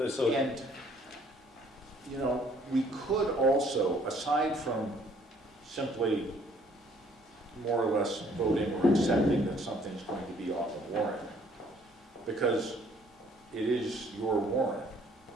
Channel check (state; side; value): normal; both; correlation 0.61